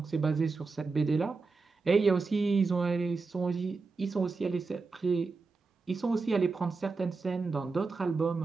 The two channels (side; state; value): left; quieter; 4.2 dB